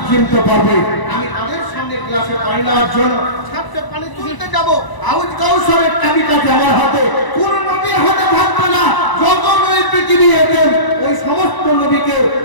চিনতে পারবে। আমি তাদের সামনে গ্লাসে পানি নেওয়ার জন্য ছাদে পানি তুলতে যাব, আউজ কাউসারের চাবিটা আমার হাতে, কোন নবীর হাতে থাকবে না। যত নবী পৃথিবী এলেন ওই সমস্ত নবীকে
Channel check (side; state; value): right; late; 1.0 ms